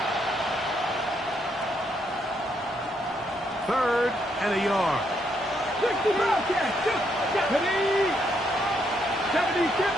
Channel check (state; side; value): normal; both; correlation 0.75